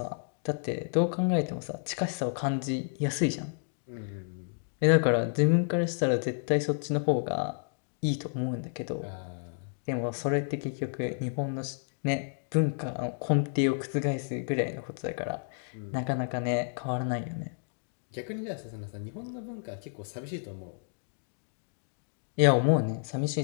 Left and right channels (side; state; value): right; silent; digital silence